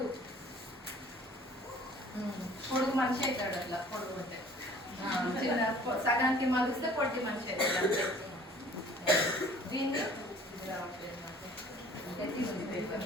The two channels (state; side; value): normal; both; correlation 0.52